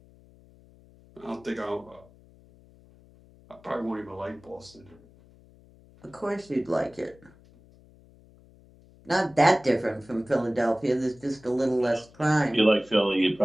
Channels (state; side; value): noise; left; hum, 26 dB below the sound